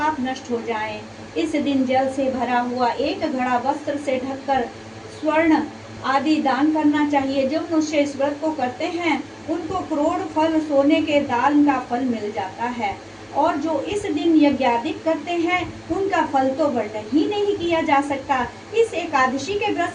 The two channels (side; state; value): both; identical; correlation 1.00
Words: नष्ट हो जाएं। इस दिन जल से भरा हुआ एक घड़ा वस्त्र से ढककर स्वर्ण आदि दान करना चाहिए। जो मनुष्य इस व्रत को करते हैं उनको करोड़ फल सोने के दान का फल मिल जाता है, और जो इस दिन यज्ञादिक करते हैं उनका फल तो वर्णन ही नहीं किया जा सकता। इस एकादशी के व्रत